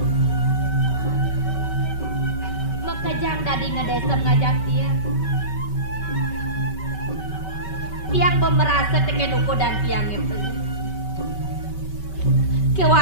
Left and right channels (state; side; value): late; right; 5.2 ms